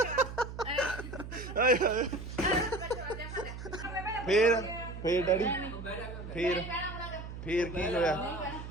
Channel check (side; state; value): right; noise; hum, 10 dB below the sound